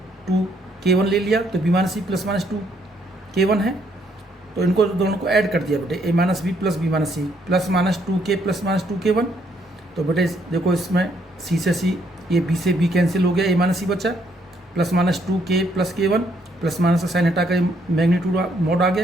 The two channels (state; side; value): normal; both; correlation 0.70